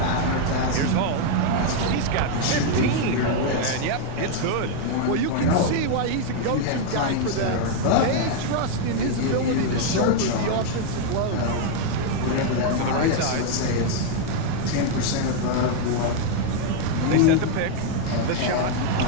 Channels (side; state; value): both; different; correlation 0.00